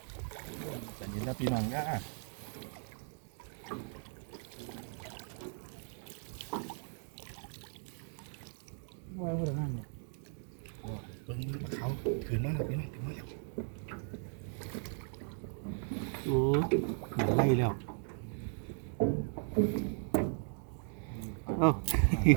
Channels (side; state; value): left; silent; 53 dB below the other